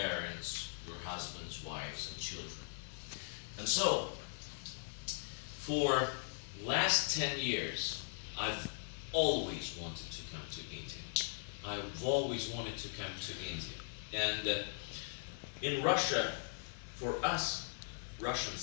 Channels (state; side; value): silent; right; 51 dB below the other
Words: your husbands, wives, and children. And so, for last 10 years, I've always wanted to come to India. I've always wanted to come to India. And in Russia, for us